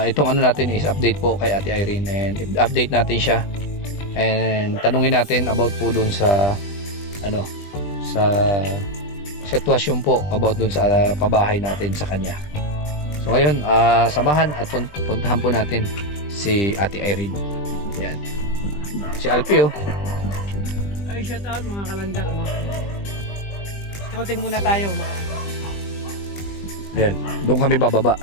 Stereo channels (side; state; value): right; late; 20 ms